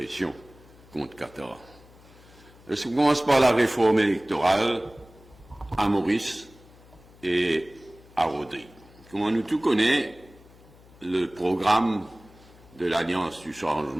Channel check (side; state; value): left; noise; hum, 24 dB below the sound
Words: contre Qatar. Je commence par la réforme électorale à Maurice et à Rodrigue. Comme nous tous connaissons, le programme de l'Alliance du